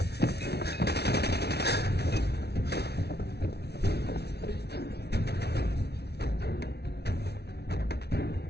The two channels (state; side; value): late; right; 0.48 ms